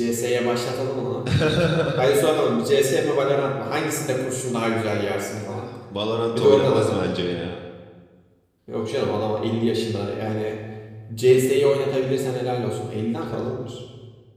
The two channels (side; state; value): both; identical; correlation 1.00